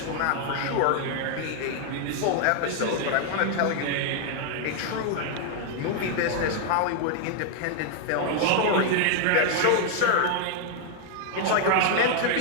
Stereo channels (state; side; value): different; both; correlation 0.00